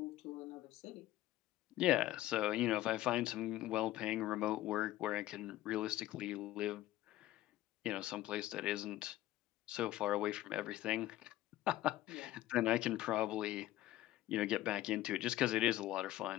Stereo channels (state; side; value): quieter; right; 15.1 dB